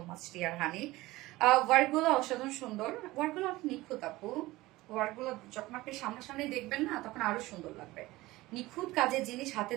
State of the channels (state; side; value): quieter; left; 19.0 dB